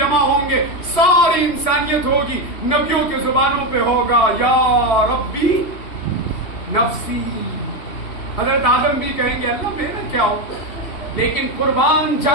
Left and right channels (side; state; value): right; late; 3.2 ms